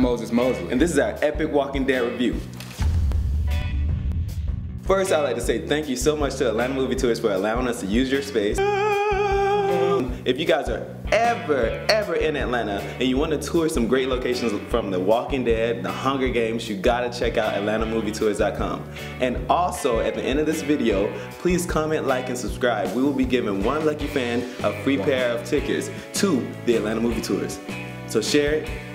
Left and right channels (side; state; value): both; identical; correlation 1.00